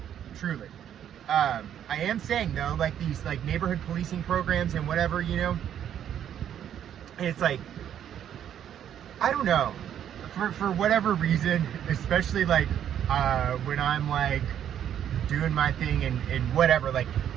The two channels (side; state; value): left; quieter; 9.9 dB